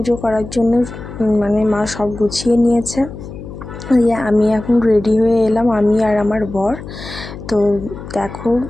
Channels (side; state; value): left; noise; hum, 12 dB below the sound